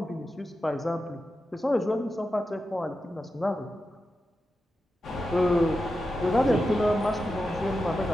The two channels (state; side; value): normal; both; correlation 0.90